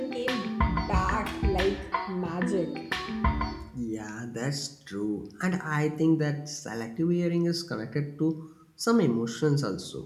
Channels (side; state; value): both; identical; correlation 1.00